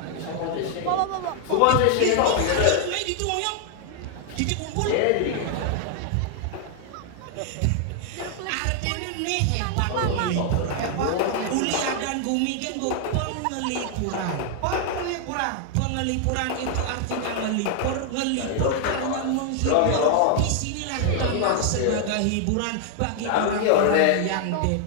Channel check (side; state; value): both; different; correlation 0.00